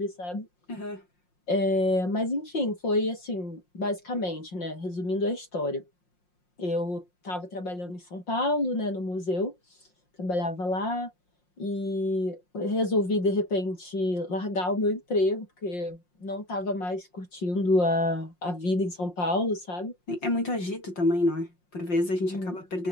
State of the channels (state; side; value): late; right; 5.6 ms